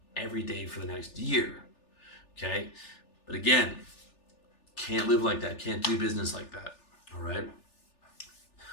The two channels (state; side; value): late; right; 3.4 ms